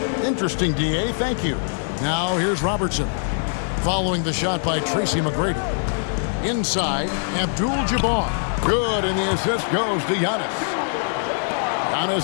Interesting, DA. Thank you. Now here's Robertson. Following the shot by Tracy McGrady. Inside, Abdul-Jabbar. Good, and the assist goes to Giannis. Giannis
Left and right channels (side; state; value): right; silent; digital silence